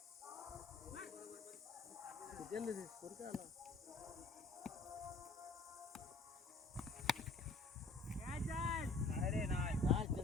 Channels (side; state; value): right; quieter; 3.4 dB